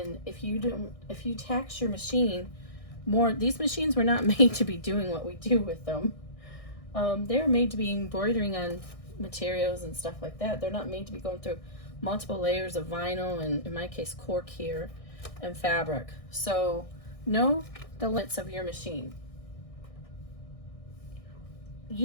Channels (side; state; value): right; late; 1.6 ms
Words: if you tax your machine more, these machines were not made to be doing what we do with them. They're made to be embroidering on materials and stuff like that. They're not made to be going through multiple layers of vinyl, and in my case cork here, and fabric. So know the limits of your machine.